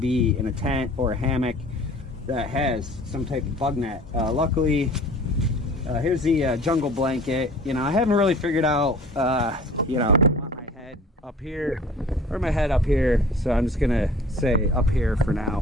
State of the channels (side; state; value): both; normal; correlation 0.47